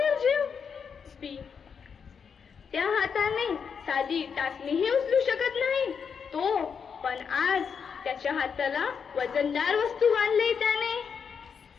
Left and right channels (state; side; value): quieter; right; 6.5 dB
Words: त्या हाताने साधी टाचणीही उचलू शकत नाही तो, पण आज त्याच्या हाताला वजनदार वस्तू बांधली त्याने.